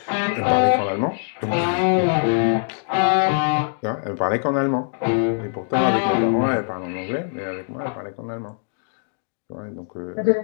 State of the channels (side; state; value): right; silent; digital silence